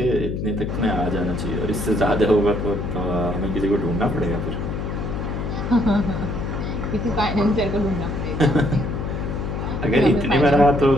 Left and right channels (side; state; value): left; noise; hum, 3 dB below the sound